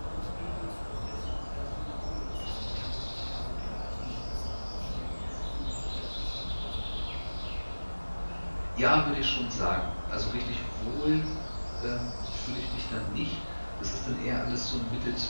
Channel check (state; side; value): inverted; both; correlation -1.00